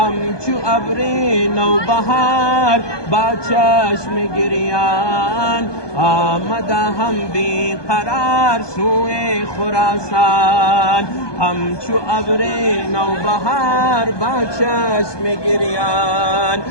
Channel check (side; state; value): right; late; 1.2 ms